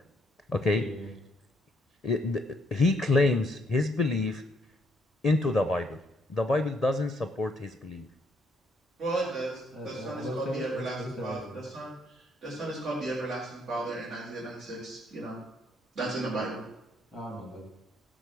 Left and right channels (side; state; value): both; normal; correlation 0.70